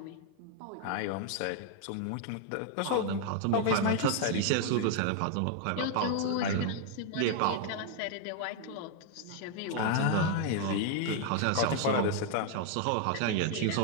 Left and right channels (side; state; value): both; different; correlation 0.00